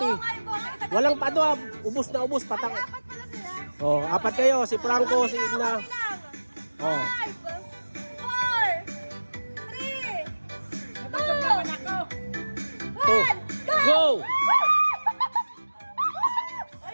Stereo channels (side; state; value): both; inverted; correlation -1.00